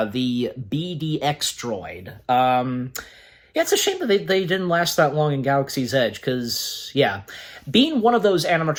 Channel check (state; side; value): identical; both; correlation 1.00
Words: the BDX droid. Yeah, it's a shame that they didn't last that long in Galaxy's Edge, because, yeah, being one of those